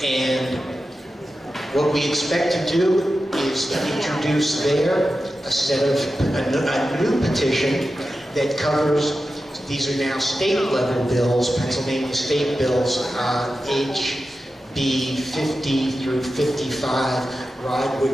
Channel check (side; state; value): both; normal; correlation 0.92